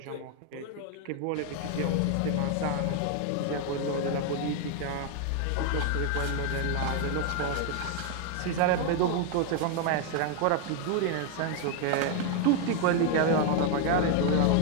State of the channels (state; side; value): different; both; correlation 0.01